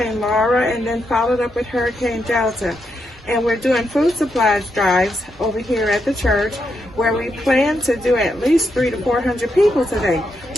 Laura and then followed up with Hurricane Delta. And we're doing food supplies drives over here at the church where we plan to do at least 300 to 400 people today.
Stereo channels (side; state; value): both; normal; correlation 0.82